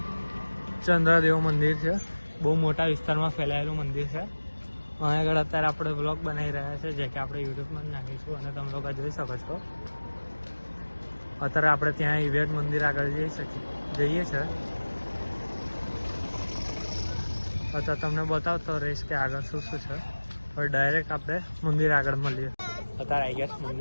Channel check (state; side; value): inverted; both; correlation -1.00